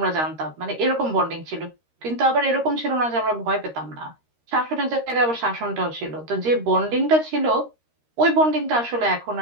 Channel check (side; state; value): left; late; 13 ms